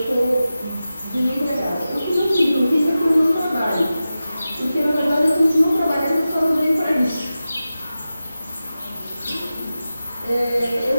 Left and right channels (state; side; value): inverted; both; correlation -0.93